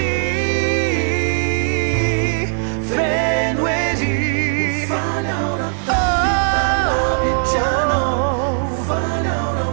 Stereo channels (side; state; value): left; silent; 65 dB below the other